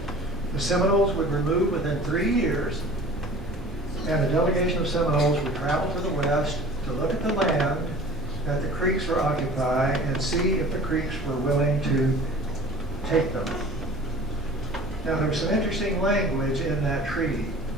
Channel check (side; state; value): both; normal; correlation 0.44